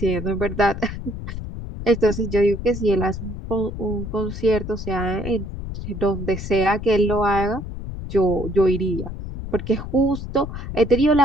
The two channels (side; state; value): left; noise; rumble, 8 dB below the sound